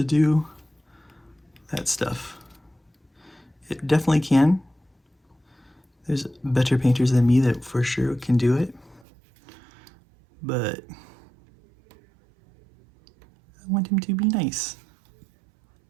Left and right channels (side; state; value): left; drops out; at 9.0 s